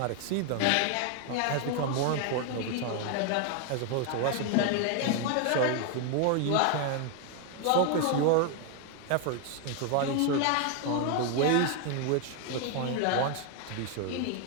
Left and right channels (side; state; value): both; different; correlation 0.01